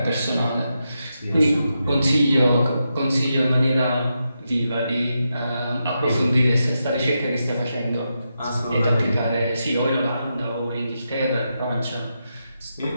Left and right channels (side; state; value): both; inverted; correlation -0.86